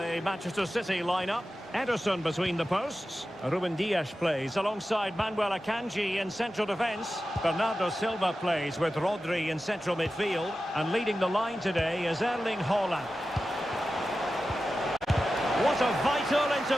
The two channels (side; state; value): both; normal; correlation 0.93